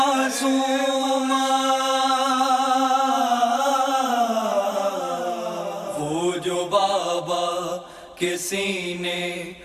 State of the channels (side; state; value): both; identical; correlation 1.00